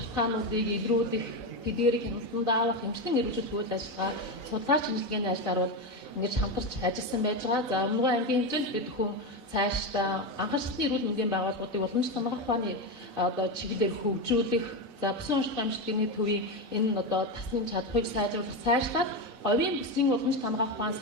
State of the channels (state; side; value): late; right; 3.9 ms